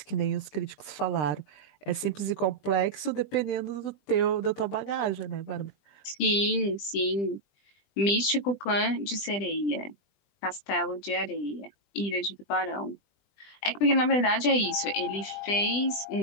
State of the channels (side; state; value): right; late; 20 ms